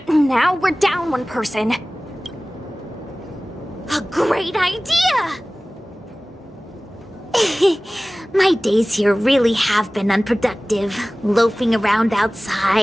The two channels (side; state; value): both; normal; correlation 0.98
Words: now we're down one person. A great idea! My days here really have been unproductive. Loafing around